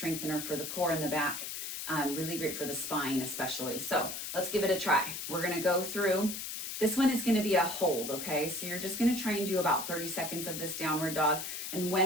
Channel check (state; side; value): noise; left; hiss, 6 dB below the sound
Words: for the core and the back. Really great for the spine especially. So let's give it a try. We're gonna go through. This one is gonna be a hold, okay? So you're just gonna try and do about 30 seconds of this downward dog. And